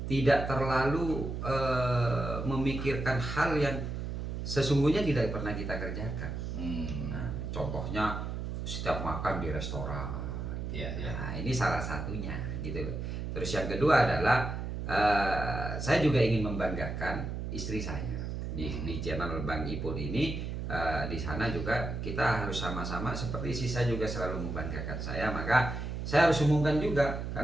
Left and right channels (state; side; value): noise; right; hum, 4 dB below the sound